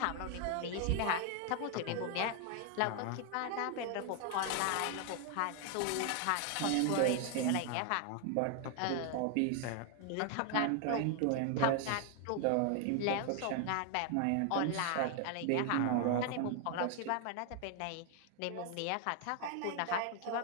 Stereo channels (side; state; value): both; different; correlation 0.00